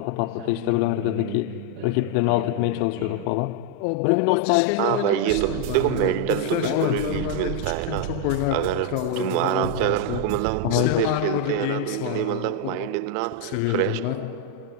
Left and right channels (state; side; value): different; both; correlation 0.00